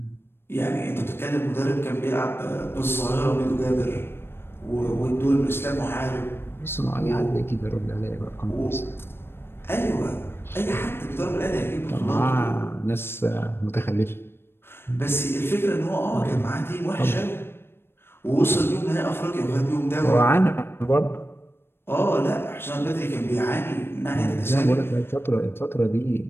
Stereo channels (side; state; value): right; late; 0.11 ms